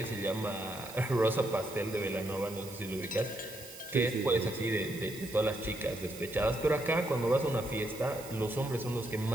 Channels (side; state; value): right; noise; hiss, 15 dB below the sound